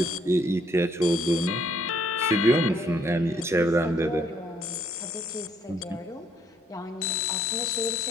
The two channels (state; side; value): normal; both; correlation 0.67